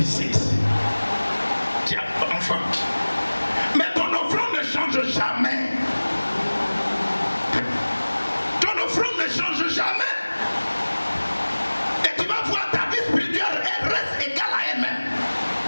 Tu as un enfant. Mais ton offrande ne change jamais. Ton offrande ne change jamais. Et tu vas voir ta vie spirituelle, elle reste égale à elle-même.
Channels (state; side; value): inverted; both; correlation -1.00